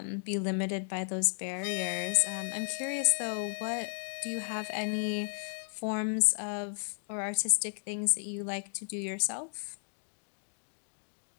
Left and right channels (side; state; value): right; silent; digital silence